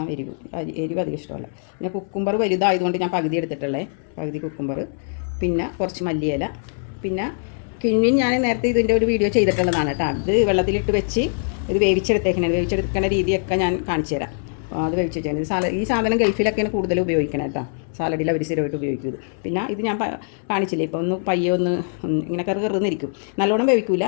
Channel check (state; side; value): silent; right; 64 dB below the other